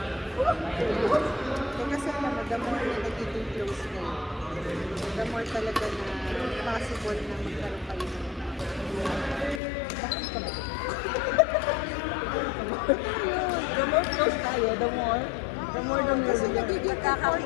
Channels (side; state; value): right; drops out; at 9.6 s